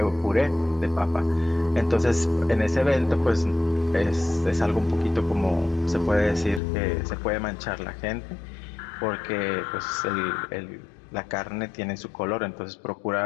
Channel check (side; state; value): right; drops out; at 6.6 s